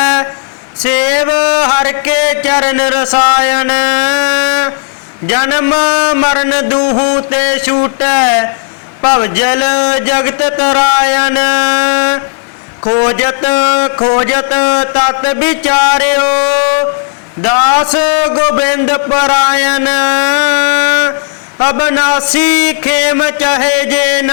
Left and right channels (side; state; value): right; silent; digital silence